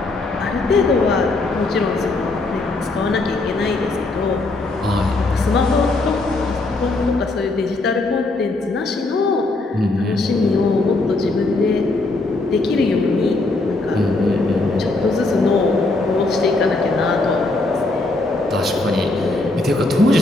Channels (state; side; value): quieter; right; 3.1 dB